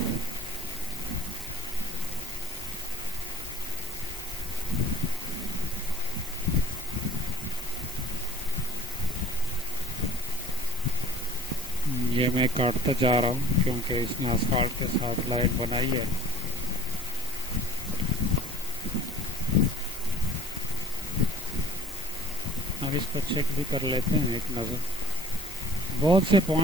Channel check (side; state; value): both; normal; correlation 0.49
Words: یہ میں کاٹتا جا رہا ہوں کیونکہ اس نے اسفالٹ کے ساتھ لائن بنائی ہے. اب اس کو چیک بھی کر لیتے ہیں ایک نظر. بہت سے